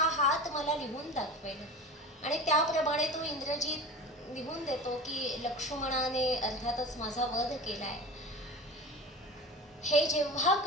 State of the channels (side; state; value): both; normal; correlation 0.33